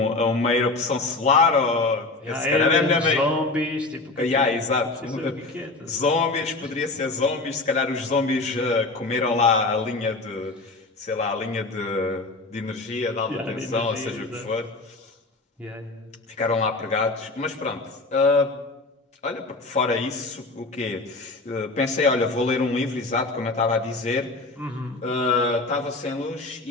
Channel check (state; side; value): quieter; right; 3.3 dB